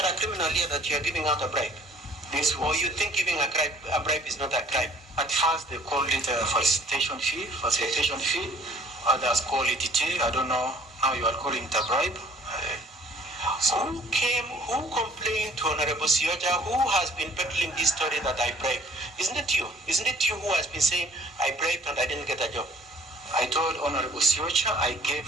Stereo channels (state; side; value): normal; both; correlation 0.55